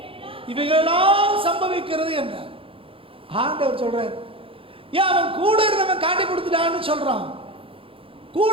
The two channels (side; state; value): left; late; 0.26 ms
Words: இவைகளெல்லாம் சம்பவிக்கிறது என்றார். ஆண்டவர் சொல்றார், ஏன் அவன் கூட இருந்தவன் காட்டி கொடுத்துட்டான்னு சொல்றான்,